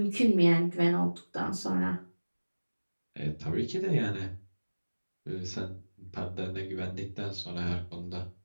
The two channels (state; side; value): inverted; both; correlation -1.00